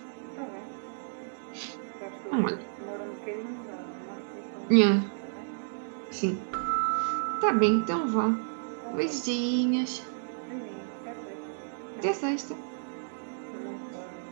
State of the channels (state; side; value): silent; left; digital silence